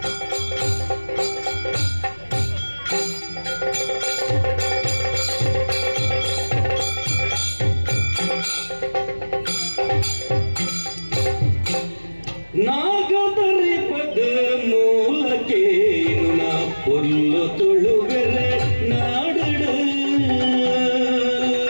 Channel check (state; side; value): inverted; both; correlation -1.00